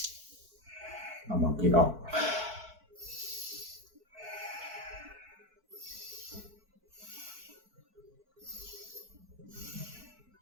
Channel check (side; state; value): left; late; 4.5 ms